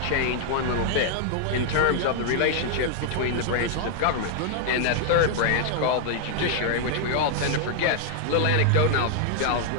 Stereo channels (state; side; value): different; both; correlation 0.00